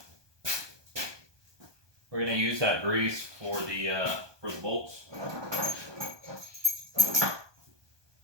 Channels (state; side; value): late; left; 1.2 ms